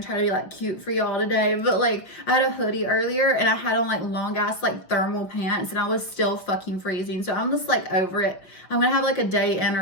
try to be like cute for y'all today, but like I had a hoodie earlier and I had on like long ass like thermal pants and I was still fucking freezing. So I'm just like over it. I'm gonna have like a day in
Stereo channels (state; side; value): late; right; 5.9 ms